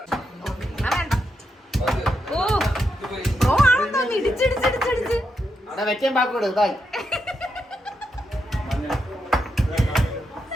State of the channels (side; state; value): both; normal; correlation 0.83